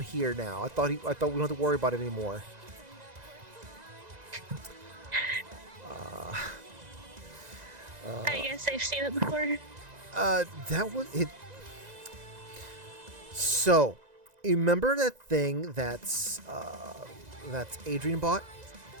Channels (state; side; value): late; left; 2.0 ms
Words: here now? I thought we don't have to worry about it anymore." I guess I've seen it before. That was it. So, you remember that thing that's Adrian bought?